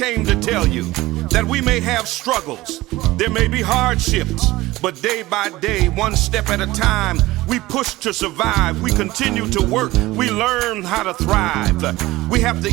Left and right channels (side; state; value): left; quieter; 18.5 dB